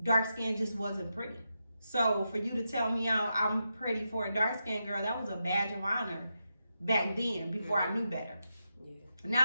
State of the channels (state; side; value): inverted; both; correlation -0.86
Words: dark skin just wasn't pretty. So for you to tell me I'm pretty for a dark skinned girl, that was a badge of honor back then, before I knew better.